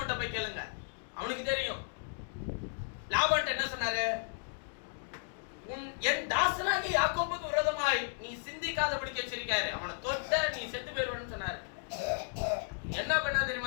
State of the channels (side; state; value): right; silent; digital silence